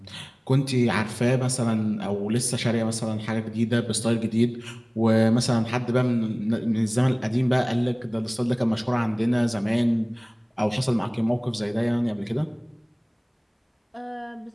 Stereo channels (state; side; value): identical; both; correlation 1.00